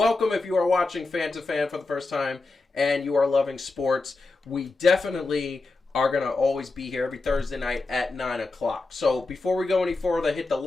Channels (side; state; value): right; quieter; 3.5 dB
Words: if you are watching Fan to Fan for the first time and you are loving sports. We definitely are going to always be here every Thursday night at 9 o'clock. So before we go any further, hit the